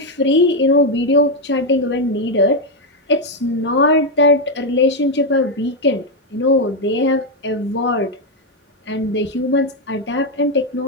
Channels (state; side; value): normal; both; correlation 0.03